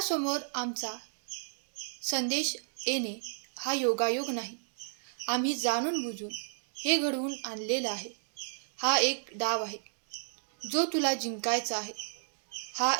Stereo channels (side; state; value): left; silent; digital silence